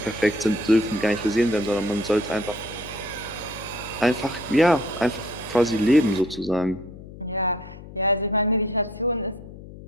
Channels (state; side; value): noise; left; hum, 15 dB below the sound